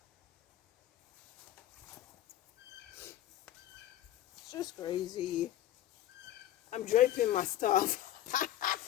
It's just crazy. I'm draping my stuff.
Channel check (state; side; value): quieter; right; 12.9 dB